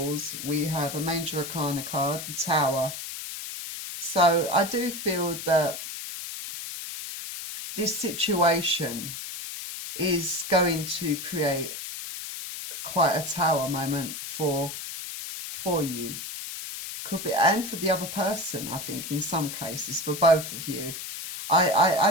we have a Major Arcana card, the Tower. So I do feel that this situation is going to create quite a tower moment for you. Could be, and for the other person, I think, in some cases, for both of you. I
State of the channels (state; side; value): noise; left; hiss, 8 dB below the sound